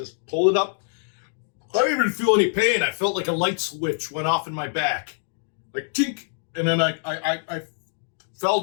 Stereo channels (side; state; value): right; silent; 62 dB below the other